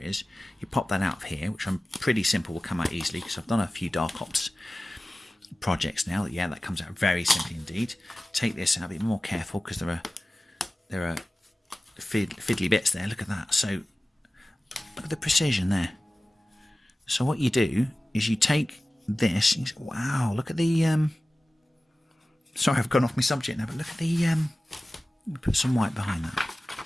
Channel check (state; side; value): normal; both; correlation 0.96